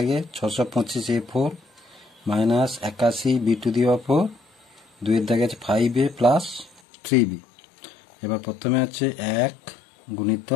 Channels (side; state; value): right; drops out; at 6.8 s